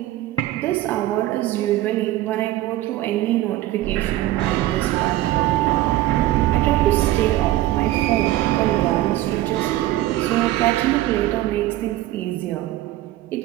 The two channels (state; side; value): quieter; left; 15.4 dB